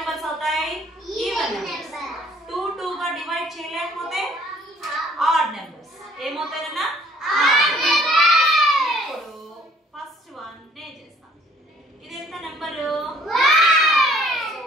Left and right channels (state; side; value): normal; both; correlation 0.59